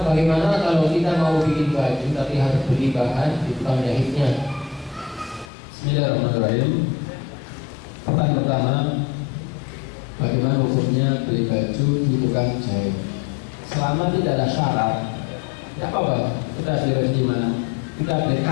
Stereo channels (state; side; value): drops out; right; at 5.5 s